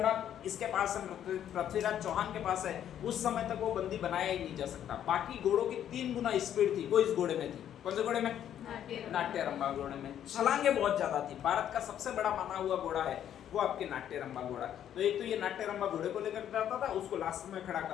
इसके पास है, पृथ्वीराज चौहान के पास है, उस समय तक वो बंदी बनाया ही नहीं जा सकता। बाकी घोड़ों की 3 गुना स्पीड थी, वो इस घोड़े में थी। कौन से घोड़े में? नाट्यरंबा घोड़े में। छलांगे बहुत ज्यादा थी। भारत का सबसे बड़ा माना हुआ घोड़ा है वो आपके नाट्यरंबा घोड़ा। तो एक तो ये नाट्यरंबा घोड़े को लेकर जाता था, उसको लास्ट में खड़ा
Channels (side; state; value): right; quieter; 10.3 dB